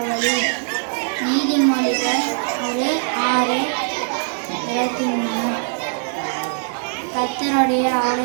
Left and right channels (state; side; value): silent; left; digital silence